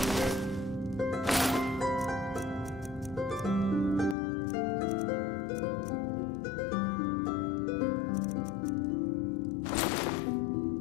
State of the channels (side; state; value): right; drops out; at 4.2 s